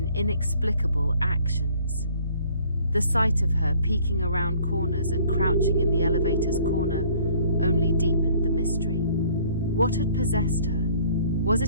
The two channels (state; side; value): inverted; both; correlation -0.56